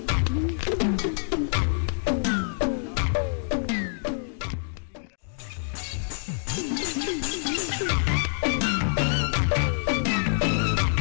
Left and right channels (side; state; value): right; silent; digital silence